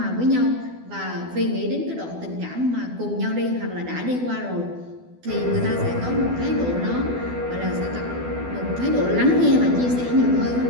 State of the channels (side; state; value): left; late; 12 ms